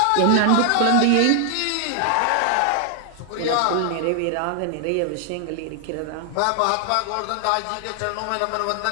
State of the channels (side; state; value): both; different; correlation 0.00